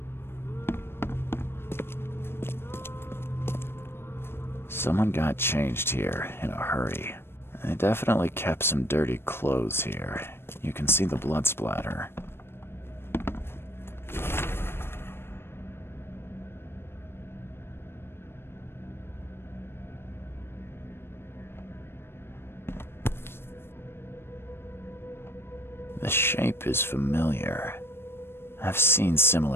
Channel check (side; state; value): right; late; 0.11 ms